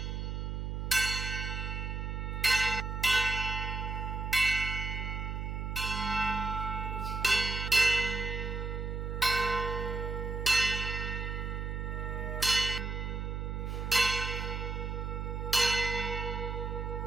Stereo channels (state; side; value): noise; right; hum, 3 dB below the sound